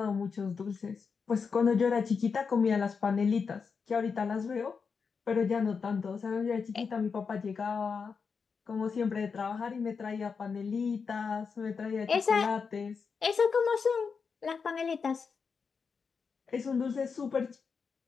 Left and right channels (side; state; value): right; quieter; 5.6 dB